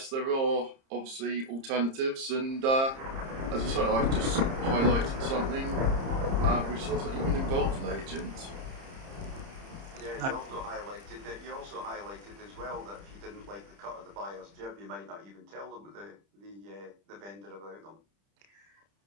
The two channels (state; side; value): late; left; 30 ms